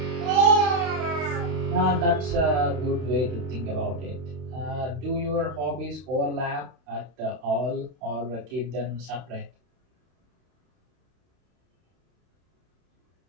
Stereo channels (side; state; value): left; late; 32 ms